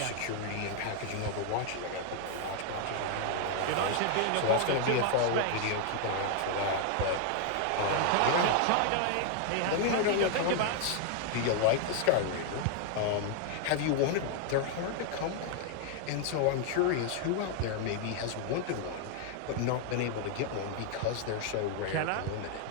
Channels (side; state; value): both; different; correlation 0.00